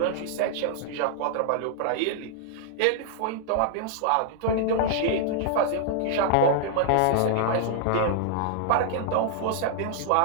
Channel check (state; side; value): different; both; correlation -0.01